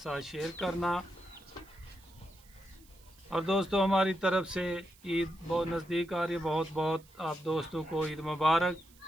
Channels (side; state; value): right; noise; hiss, 27 dB below the sound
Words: शेयर करना। और दोस्तों, हमारी तरफ से ईद बहुत नज़दीक आ रही है, बहुत बहुत आप दोस्तों को ईद मुबारक।